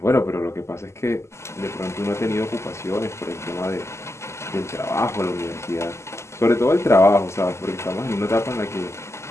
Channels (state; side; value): late; right; 0.13 ms